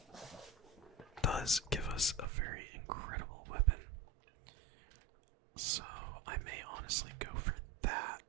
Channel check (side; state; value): left; drops out; at 2.2 s